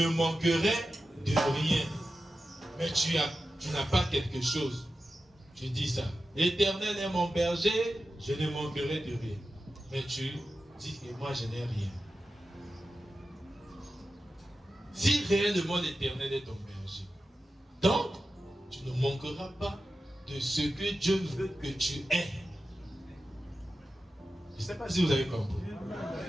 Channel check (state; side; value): normal; both; correlation 0.92